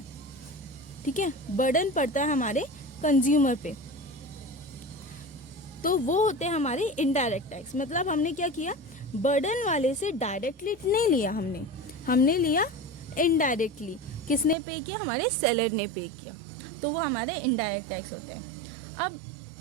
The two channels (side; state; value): left; drops out; at 14.6 s